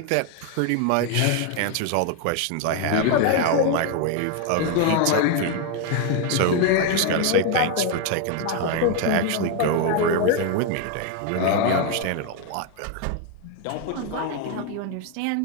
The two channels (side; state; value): both; different; correlation 0.01